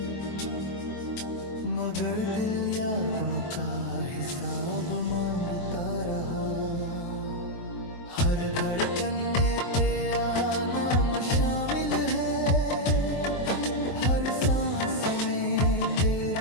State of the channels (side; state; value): right; late; 23 ms